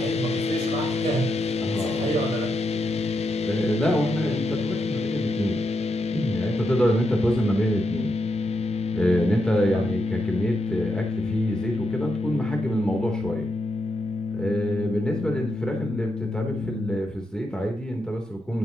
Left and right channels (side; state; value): both; normal; correlation 0.83